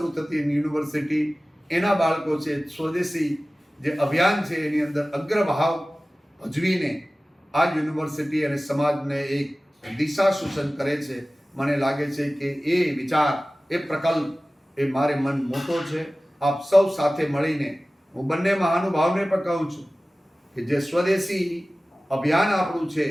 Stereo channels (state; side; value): normal; both; correlation 0.97